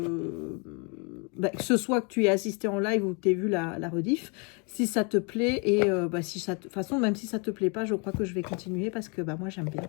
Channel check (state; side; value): quieter; right; 34.2 dB